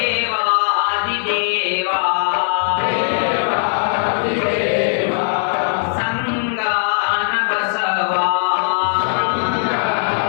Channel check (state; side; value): silent; right; 67 dB below the other